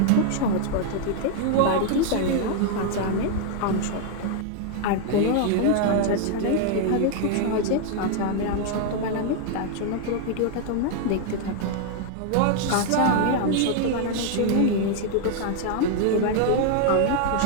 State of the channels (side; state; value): both; different; correlation 0.00